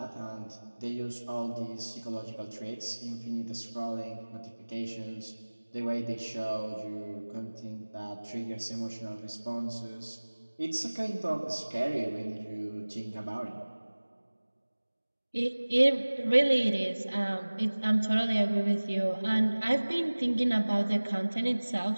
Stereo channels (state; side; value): inverted; both; correlation -1.00